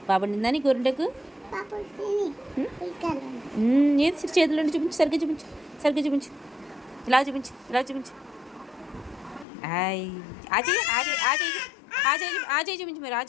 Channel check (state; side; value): drops out; right; at 9.5 s